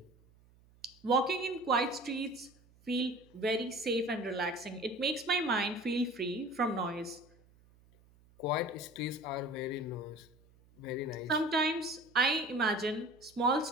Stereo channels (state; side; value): noise; right; hum, 29 dB below the sound